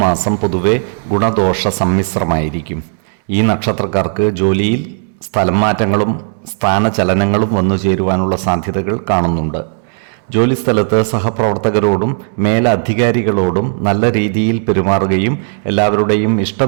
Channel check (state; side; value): silent; left; digital silence